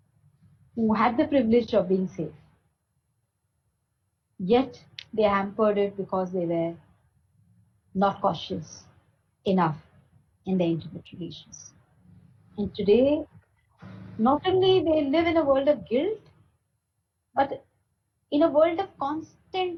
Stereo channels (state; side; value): identical; both; correlation 1.00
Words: who had the privilege of being safe, yet they hampered it because they were not cautious enough in their intimate relations. And today, not only they live in a world of guilt, but in a world of